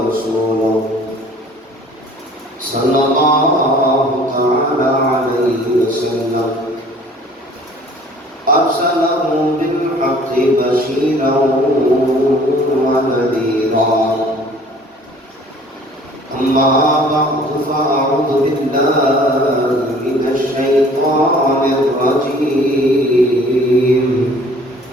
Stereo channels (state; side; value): normal; both; correlation 0.52